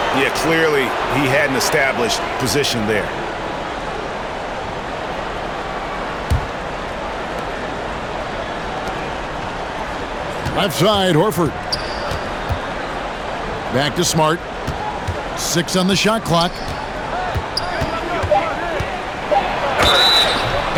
Yeah, clearly he had an established position there. Left side, Horford. Back to Smart. 6 on the shot clock.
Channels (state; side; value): identical; both; correlation 1.00